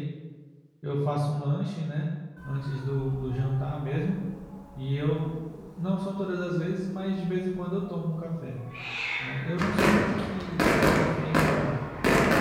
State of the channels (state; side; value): identical; both; correlation 1.00